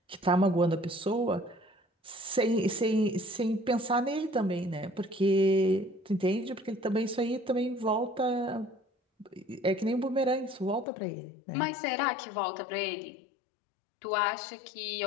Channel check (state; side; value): drops out; right; at 10.9 s